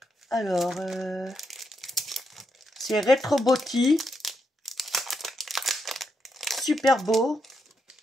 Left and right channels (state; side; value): normal; both; correlation 0.81